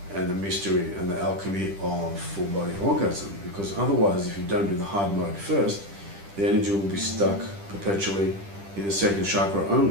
and the mystery and the alchemy of full body orgasm. Because otherwise, if you don't do the hard mode first, the energy will be stuck perpetually in the second chakra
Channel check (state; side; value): late; left; 10 ms